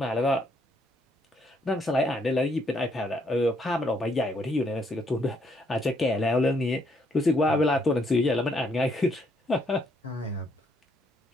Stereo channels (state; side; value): normal; both; correlation 0.71